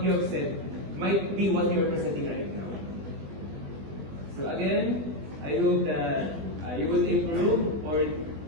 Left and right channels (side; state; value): left; late; 20 ms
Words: you have said might be what you are presenting right now. So again, I hope that you will improve, or